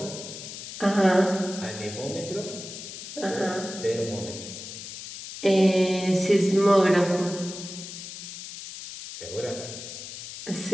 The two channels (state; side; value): noise; left; hiss, 11 dB below the sound